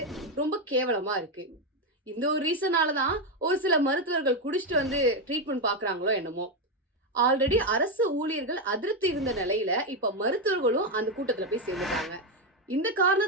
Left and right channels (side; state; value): both; normal; correlation 0.07